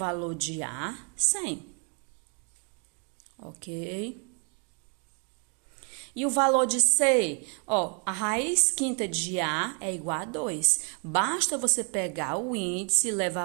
de A? 100. Ok? E o valor de C? Ó, a raiz quinta de A é igual a 2. Basta você pegar o índice e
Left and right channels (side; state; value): left; quieter; 38.6 dB